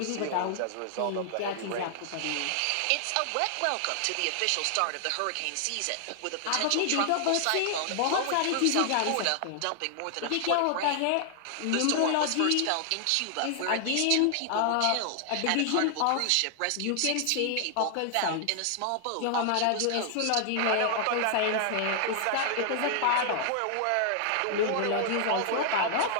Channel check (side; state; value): both; different; correlation 0.00